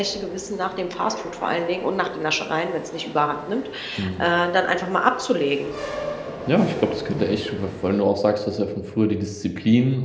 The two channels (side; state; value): both; identical; correlation 1.00